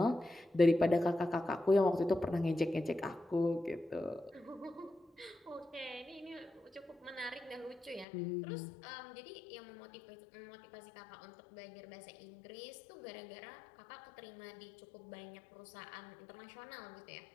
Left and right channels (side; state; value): right; drops out; at 8.1 s